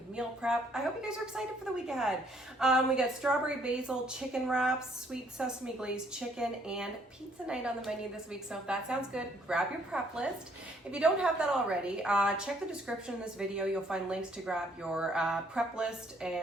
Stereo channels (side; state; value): both; normal; correlation 0.65